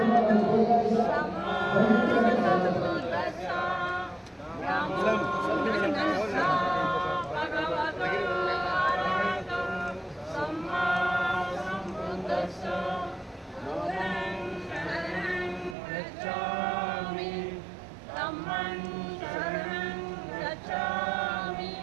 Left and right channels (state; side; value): drops out; left; at 15.8 s